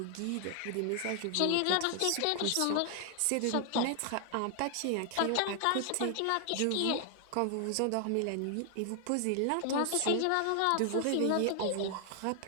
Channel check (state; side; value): different; both; correlation 0.00